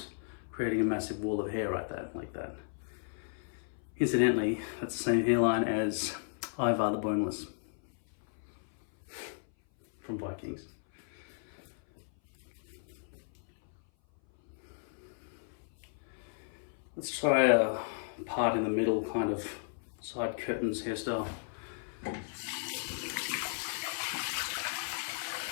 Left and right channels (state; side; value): silent; right; 55 dB below the other